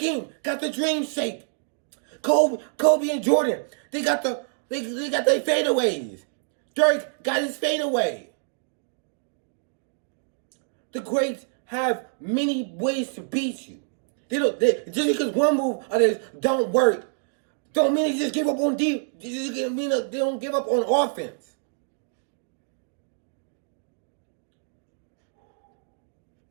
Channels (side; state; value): left; silent; digital silence